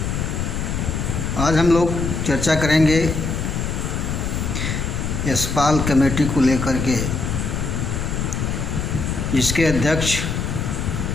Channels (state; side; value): noise; left; rumble, 2 dB below the sound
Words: आज हम लोग चर्चा करेंगे यशपाल कमेटी को लेकर के, जिसके अध्यक्ष